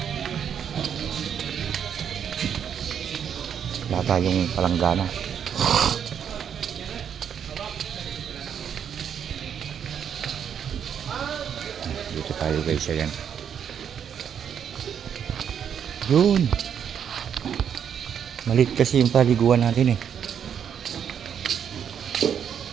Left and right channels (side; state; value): left; quieter; 8.3 dB